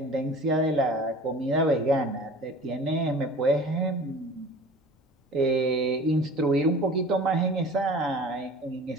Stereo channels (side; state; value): both; normal; correlation 0.42